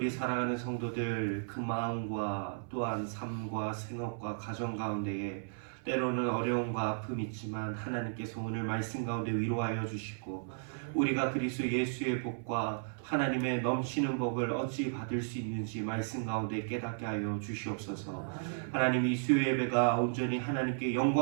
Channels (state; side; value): silent; left; 55 dB below the other